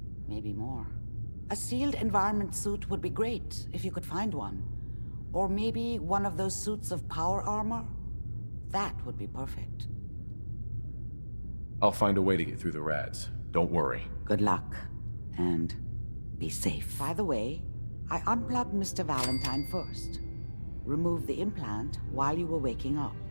Maybe more. A sealed environment suit would be great, if you could find one. Or maybe one of those suits of power armor? That would be perfect. I'll find a way to get through the rads. Don't worry. Good luck. And be safe. By the way, I unplugged Mr. Valentine first. Removed the implant while you were waking up.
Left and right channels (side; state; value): both; inverted; correlation -1.00